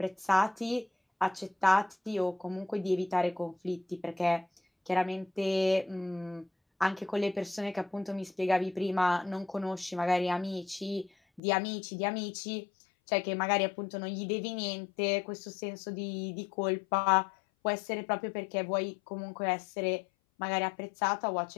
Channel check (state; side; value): drops out; right; at 11.4 s